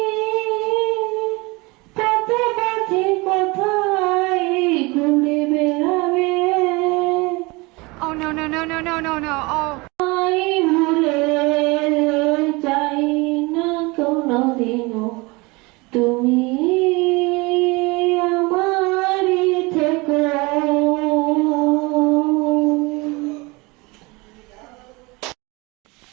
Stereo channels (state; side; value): quieter; left; 25.2 dB